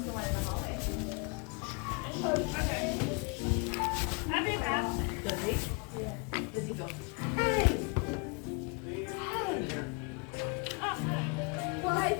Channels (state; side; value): quieter; right; 32.3 dB